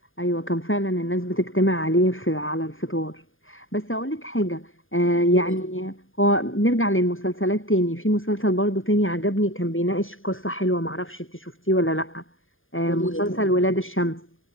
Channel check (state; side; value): late; right; 0.59 ms